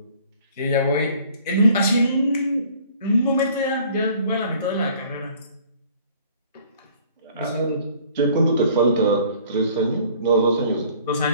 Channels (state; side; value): inverted; both; correlation -0.54